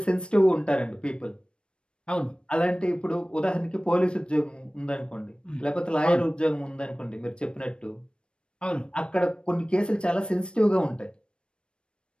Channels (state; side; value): late; right; 0.056 ms